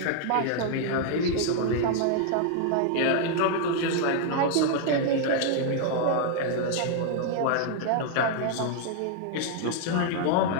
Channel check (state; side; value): different; both; correlation 0.00